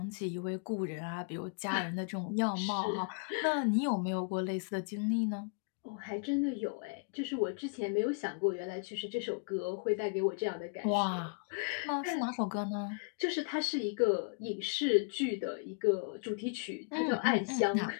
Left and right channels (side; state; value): right; quieter; 35.8 dB